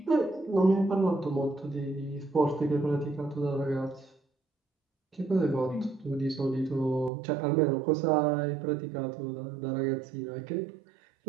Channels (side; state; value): left; drops out; at 7.1 s